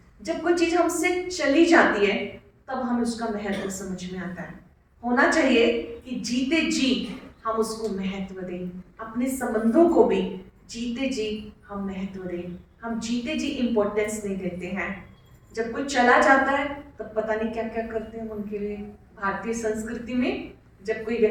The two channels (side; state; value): both; identical; correlation 1.00